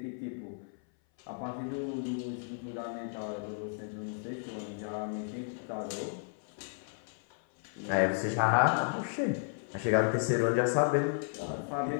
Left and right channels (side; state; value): right; silent; 55 dB below the other